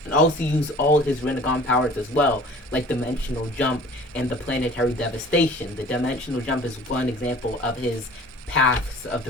and also use all his Rinnegan powers as well, like Dimensional Jump and the Planetary Devastation. The Dimensional Jump is one example of his paths of the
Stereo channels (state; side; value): normal; both; correlation 0.47